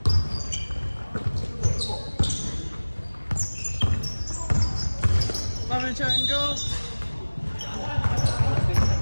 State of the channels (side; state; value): both; inverted; correlation -1.00